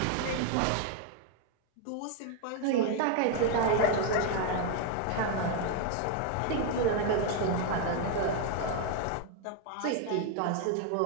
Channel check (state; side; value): different; both; correlation 0.01